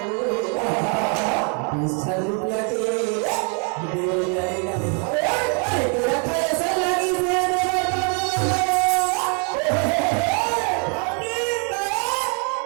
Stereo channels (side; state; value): left; quieter; 38.6 dB